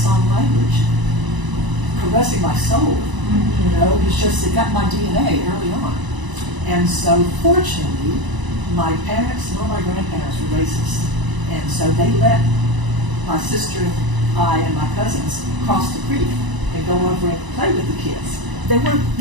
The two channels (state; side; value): late; left; 1.0 ms